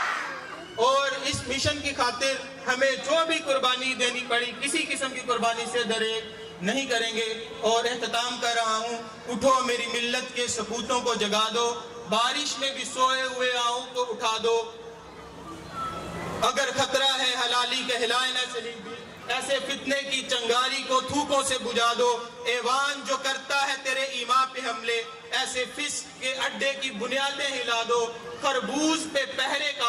اور اس مشن کی خاطر ہمیں جو بھی قربانی دینی پڑی، کسی قسم کی قربانی سے دریغ نہیں کریں گے۔ اور اختتام کر رہا ہوں، اٹھو میری ملت کے سپوتوں کو جگا دو، بارش میں بھی سوئے ہوئے آؤں کو اٹھا دو، اگر خطرہ ہے حلالی کہلائے نہ چلی بھی، ایسے فتنے کی چنگاری کو تھوکوں سے بجھا دو۔ ایوان جو کرتا ہے تیرے ایمان پہ حملے، ایسے فسق کے اڈے کی بنیادیں ہلا دو۔ خربوز پہ پہرے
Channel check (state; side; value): identical; both; correlation 1.00